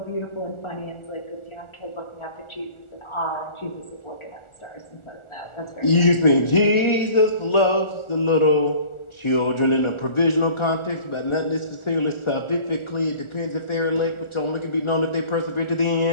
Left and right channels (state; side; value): late; right; 1.4 ms